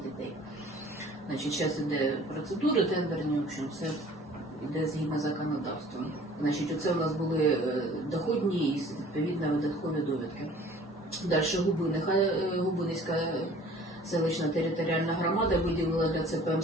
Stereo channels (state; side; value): normal; both; correlation 0.50